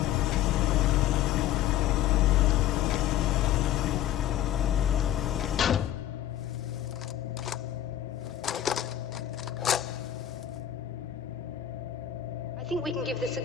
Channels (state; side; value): quieter; right; 11.5 dB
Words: I think we can give this a